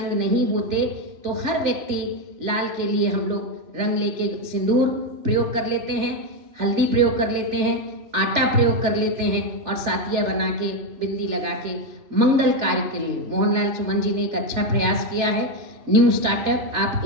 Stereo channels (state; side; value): late; left; 3.4 ms